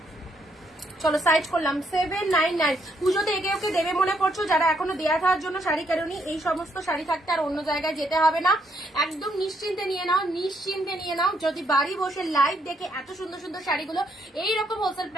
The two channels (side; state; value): both; normal; correlation 0.73